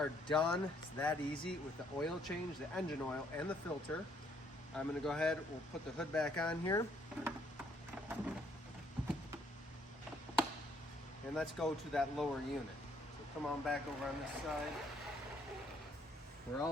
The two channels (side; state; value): both; normal; correlation 0.67